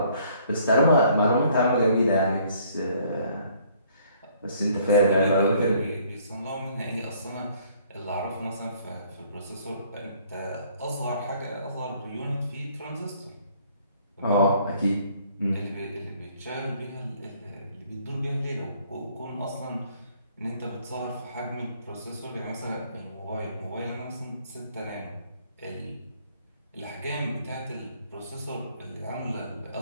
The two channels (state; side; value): inverted; both; correlation -0.61